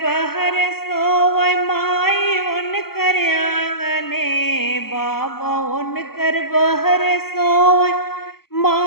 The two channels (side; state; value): right; late; 0.94 ms